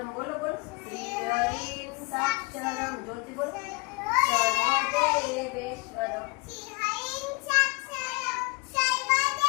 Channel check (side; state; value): right; quieter; 28.0 dB